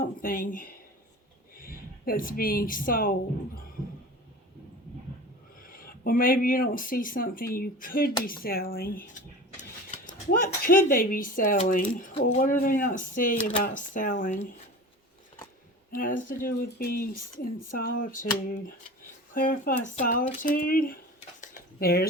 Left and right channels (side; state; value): both; normal; correlation 0.36